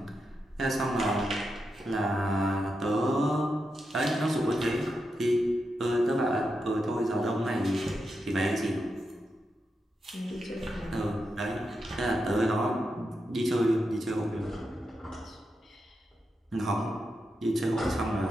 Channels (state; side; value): normal; both; correlation 0.87